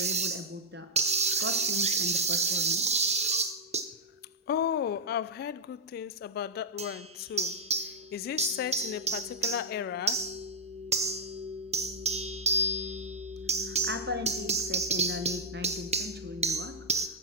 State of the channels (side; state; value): both; normal; correlation -0.07